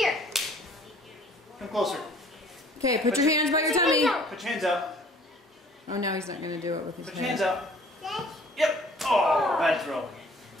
Come closer. Okay, put your hands by your Put your hands tummy. out. Put your hands out. Oh, now he's not going to do it with his Put your hands head. out. Yep. Oh, bad throw.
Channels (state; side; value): normal; both; correlation 0.53